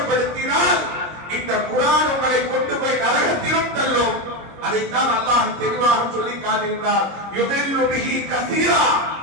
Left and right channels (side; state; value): left; late; 25 ms